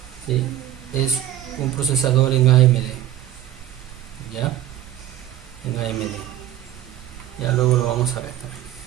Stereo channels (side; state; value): left; quieter; 12.4 dB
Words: ¿sí? Es un procesador en AMD, ya, en AMD. Ya luego lo vamos a ver también.